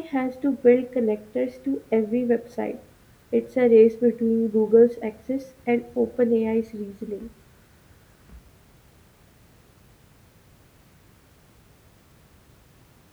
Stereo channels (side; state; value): both; identical; correlation 1.00